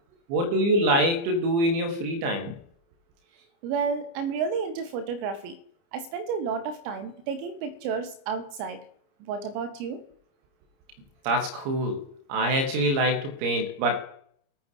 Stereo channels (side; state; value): left; late; 29 ms